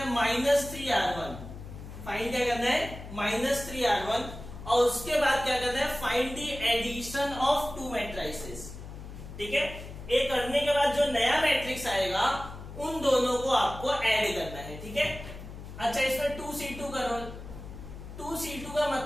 -3R1, फाइंड क्या करना है -3R1, और उसके बाद क्या करना है find the addition of 2 matrices. ठीक है, ये करने के बाद जो नया मैट्रिक्स आएगा उन दोनों को आपको ऐड करना है। ठीक है, अच्छा इसमें 2C2 करो। 2C2 का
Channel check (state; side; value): noise; left; hum, 12 dB below the sound